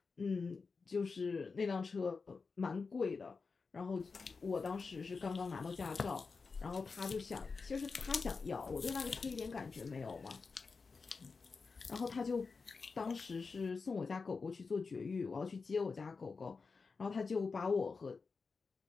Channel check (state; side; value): quieter; right; 4.7 dB